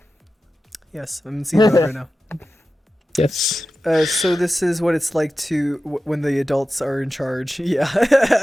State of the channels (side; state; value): both; normal; correlation 0.93